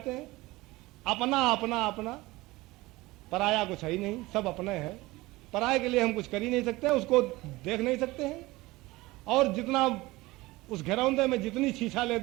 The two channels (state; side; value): quieter; left; 20.3 dB